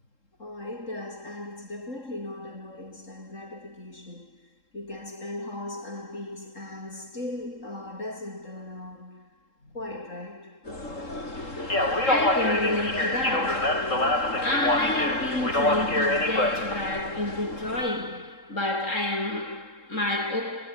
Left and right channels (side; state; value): right; late; 3.7 ms